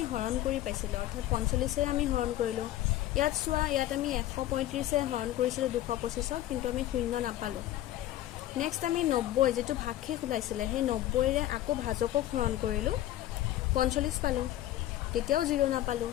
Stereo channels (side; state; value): right; quieter; 13.9 dB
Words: হৰণ কৰি পাইছিলোঁ, অৰ্থাৎ 45ৰে আমি হৰণ কৰিলোঁ। ইয়াত চোৱা, ইয়াত আমি 135ৰে হৰণ কৰিছিলোঁ 225ক, কিন্তু আমি 0 নাপালোঁ। নেক্সট আমি 90 যেটো ভাগশেষ ওলাইছিলে সেই 90ৰে আকৌ ভাজকক হৰণ কৰিলোঁ 45 পালোঁ তেতিয়াও 0 নাপালোঁ